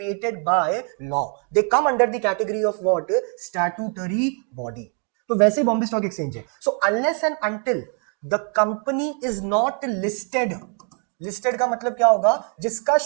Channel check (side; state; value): left; quieter; 39.2 dB